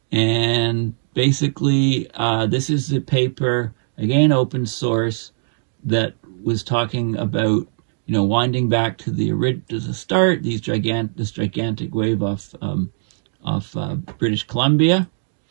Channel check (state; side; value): silent; left; digital silence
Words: And basically, this is the paper, again, open source, that was talking about, you know, winding back to the start, this gigantic wave off British Columbia,